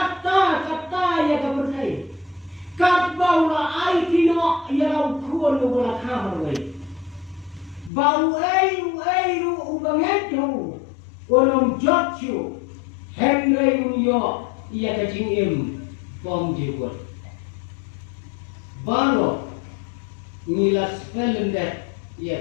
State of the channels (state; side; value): drops out; right; at 7.9 s